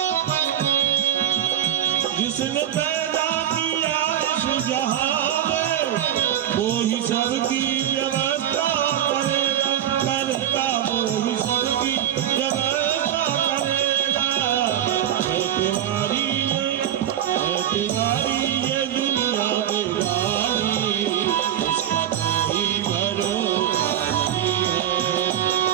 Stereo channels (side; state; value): left; quieter; 10.8 dB